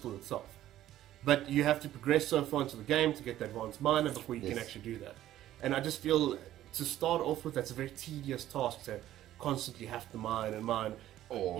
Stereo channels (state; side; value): quieter; left; 13.2 dB